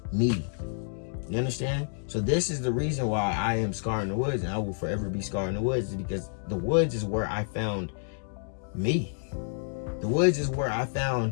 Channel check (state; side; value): silent; right; digital silence